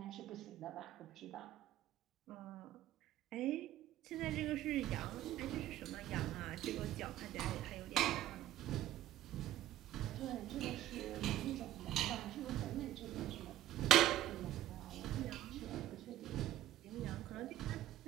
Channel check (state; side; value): quieter; left; 13.6 dB